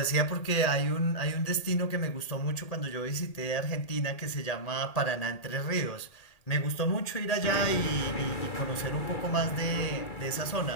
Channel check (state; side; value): late; right; 2.4 ms